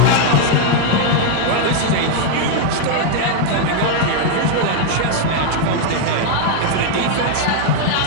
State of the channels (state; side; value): different; both; correlation 0.00